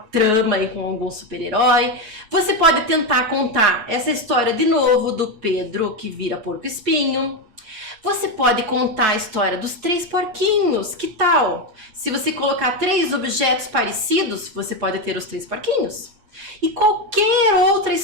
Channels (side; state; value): left; late; 8.4 ms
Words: aí com algum super-herói. Você pode tentar contar essa história de novo do Pedro que vira porco-espinho. Você pode contar a história dos 3 porquinhos, que tal? Se você colocar 3 objetos parecidos, você pode ter os 3 porquinhos. E qualquer outra